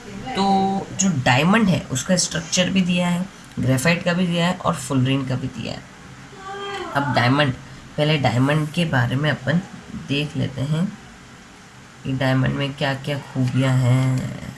तो जो डायमंड है उसका स्ट्रक्चर भी दिया है, ग्रेफाइट का भी दिया है और फुलरीन का भी दिया है। अब डायमंड, पहले डायमंड के बारे में अपन देख लेते हैं कि डायमंड में क्या क्या खूबियाँ हैं।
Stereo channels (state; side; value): identical; both; correlation 1.00